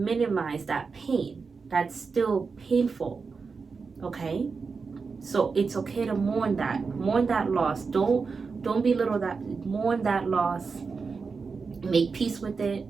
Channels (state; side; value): quieter; left; 4.9 dB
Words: that pain. That's still painful, okay? So it's okay to mourn that loss. Don't belittle that. Mourn that loss. Make peace with it.